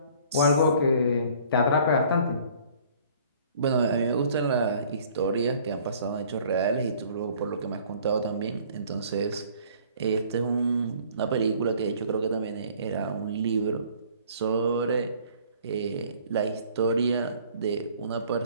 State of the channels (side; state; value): both; inverted; correlation -0.54